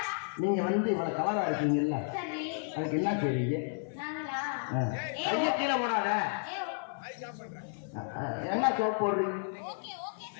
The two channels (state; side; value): silent; right; 56 dB below the other